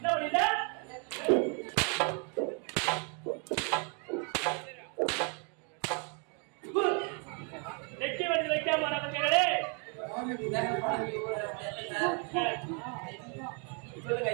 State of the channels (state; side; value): quieter; left; 37.2 dB